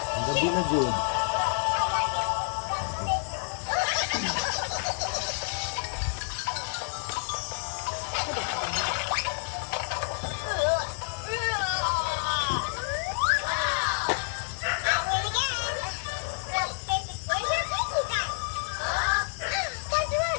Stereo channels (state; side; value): silent; right; 55 dB below the other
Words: Ang gabi na, Jude.